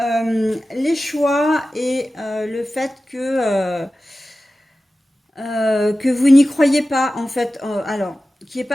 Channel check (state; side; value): normal; both; correlation 0.95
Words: les choix et le fait que vous n'y croyez pas, en fait, alors, qu'il n'y ait